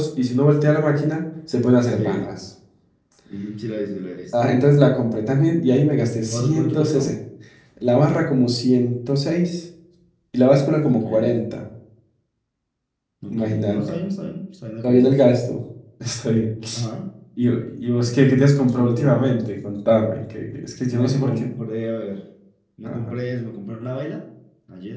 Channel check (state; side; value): identical; both; correlation 1.00